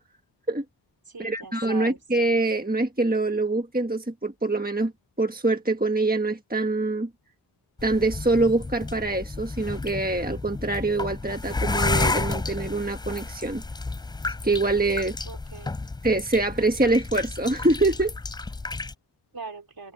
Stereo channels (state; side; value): normal; both; correlation 0.48